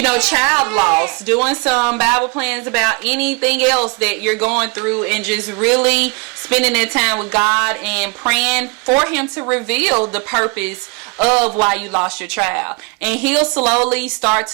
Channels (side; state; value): left; quieter; 29.2 dB